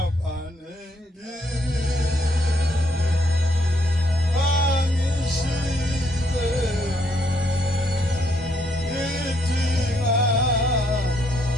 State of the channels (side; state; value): both; normal; correlation 0.72